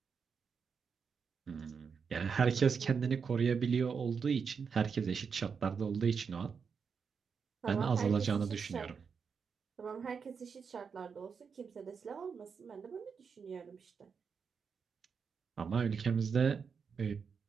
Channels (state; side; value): quieter; left; 6.0 dB